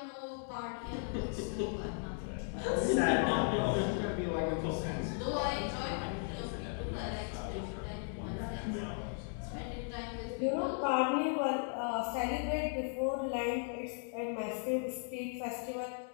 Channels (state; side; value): silent; right; 53 dB below the other